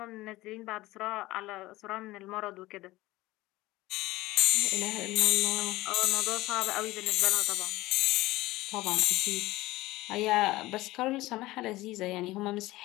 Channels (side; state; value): right; quieter; 18.4 dB